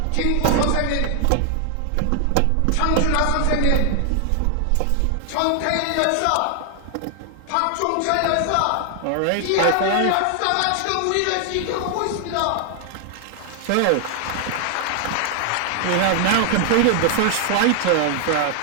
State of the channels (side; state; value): both; different; correlation 0.00